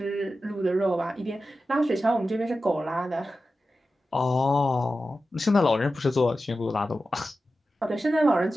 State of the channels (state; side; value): normal; both; correlation 0.93